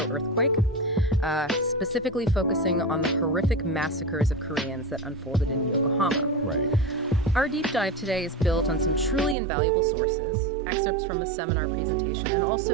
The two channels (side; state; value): left; drops out; at 9.3 s